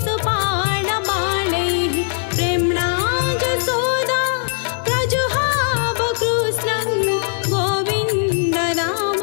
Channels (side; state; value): right; silent; digital silence